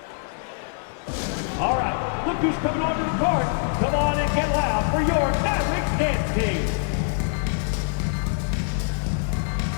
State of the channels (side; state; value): right; silent; 62 dB below the other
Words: All right, look who's coming onto the court. Come on and get loud for your Mavericks dance team.